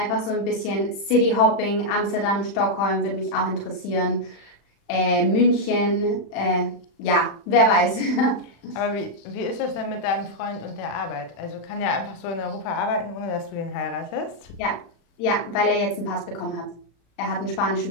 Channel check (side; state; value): right; late; 35 ms